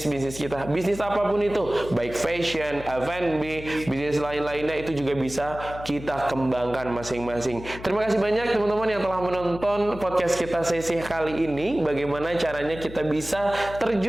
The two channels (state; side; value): noise; left; hum, 13 dB below the sound